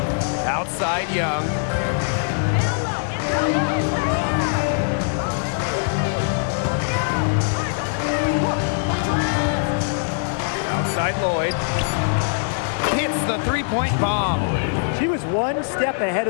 Outside Young. Outside Lloyd. Hits the 3-point bomb. She was 1 step ahead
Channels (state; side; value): silent; right; digital silence